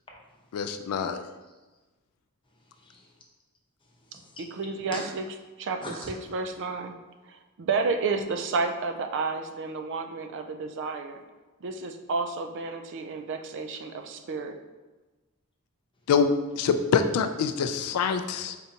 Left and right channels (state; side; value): normal; both; correlation -0.13